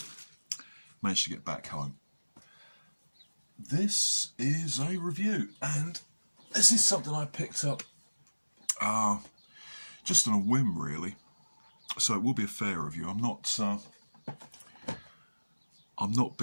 managed to get back home. This is a review, and this is something I picked up just on a whim, really. So it will be a fair review. I'm not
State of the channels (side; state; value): both; inverted; correlation -1.00